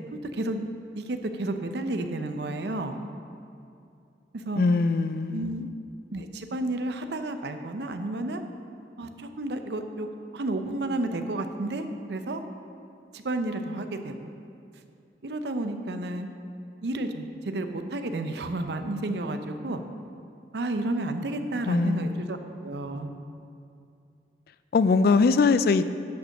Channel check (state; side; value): normal; both; correlation 0.56